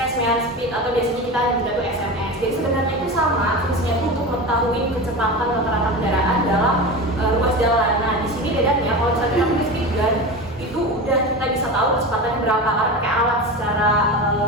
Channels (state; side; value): normal; both; correlation 0.26